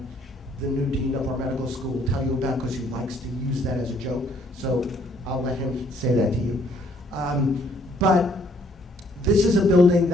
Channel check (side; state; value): both; normal; correlation 0.64